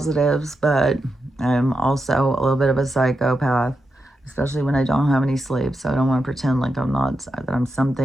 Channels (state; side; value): normal; both; correlation 0.87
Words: but I'm also a little bit of a psychopath, especially when I don't have any sleep. So I don't want to pretend like that I'm